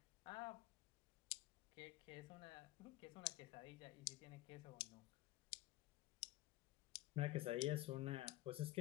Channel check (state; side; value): quieter; right; 17.3 dB